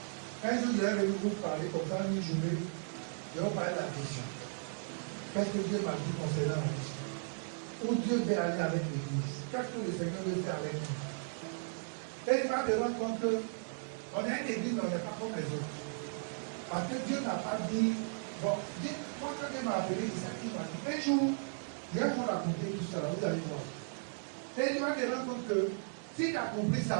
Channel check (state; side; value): silent; left; digital silence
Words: Un jour, je vais venir vous parler comme ça, une journée. Je vais vous parler de la vision. Qu'est-ce que Dieu m'a dit concernant la vision? Où Dieu veut aller avec l'Église? Qu'est-ce que le Seigneur veut faire avec nous? Et il va te rendre compte qu'on a une église, mais on n'est pas comme les autres. Parce que Dieu n'a pas dit, bon, moi quand Dieu m'a appelé, c'est ça qu'il m'a dit. Un jour, je vais vous raconter tout ça, vous allez voir. Et il va te rendre compte que si tu as compris